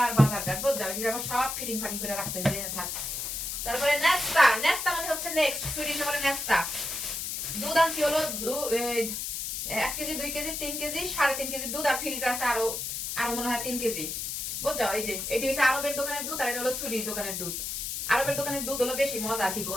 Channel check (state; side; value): noise; left; hiss, 4 dB below the sound